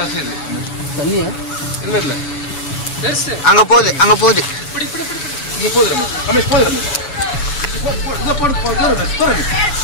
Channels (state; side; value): late; right; 7.0 ms